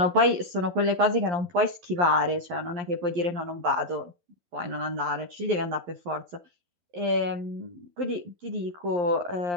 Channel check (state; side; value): late; left; 11 ms